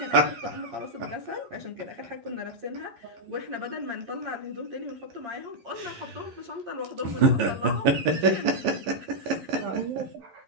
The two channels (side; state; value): left; late; 11 ms